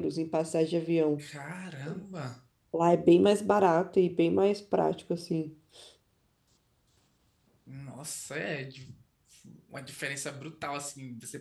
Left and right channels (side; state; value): both; identical; correlation 1.00